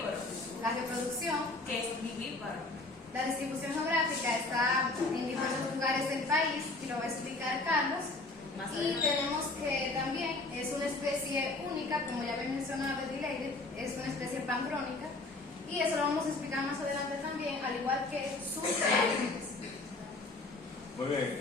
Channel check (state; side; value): quieter; right; 3.1 dB